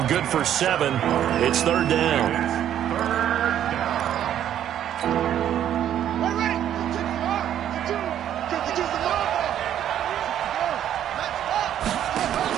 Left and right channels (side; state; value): left; quieter; 10.6 dB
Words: good for 7. It's 3rd down.